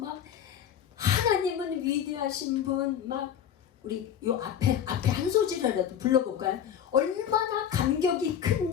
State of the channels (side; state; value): right; quieter; 9.2 dB